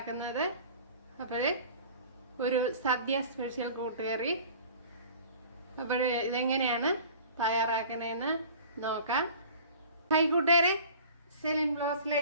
അപ്പോൾ ഒരു സദ്യ സ്പെഷ്യൽ കൂട്ടുകറി. അപ്പോൾ ഇതെങ്ങനെയാണ് തയ്യാറാക്കുന്നതെന്ന് നോക്കാം. കൂട്ടുകാരെ, സെലിൻ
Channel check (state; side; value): inverted; both; correlation -0.44